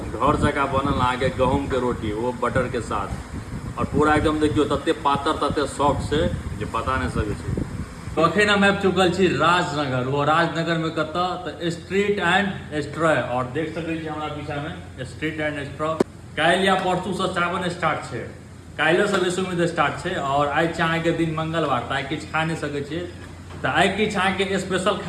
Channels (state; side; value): identical; both; correlation 1.00